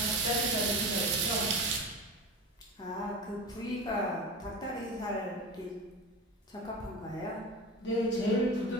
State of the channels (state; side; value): normal; both; correlation 0.28